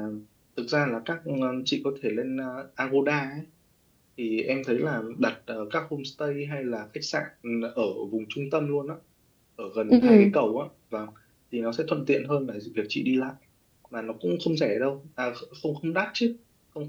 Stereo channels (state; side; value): identical; both; correlation 1.00